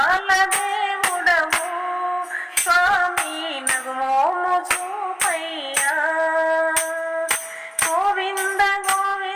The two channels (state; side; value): identical; both; correlation 1.00